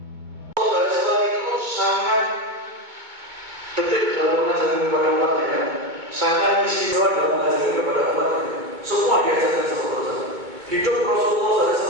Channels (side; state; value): left; late; 2.2 ms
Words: Sangat detik dalam mengajarkan kepada umatnya, sangat istimewa dalam mengajarkan kepada umatnya. Semua diajarkan sama Rasulullah. Hidup Rasulullah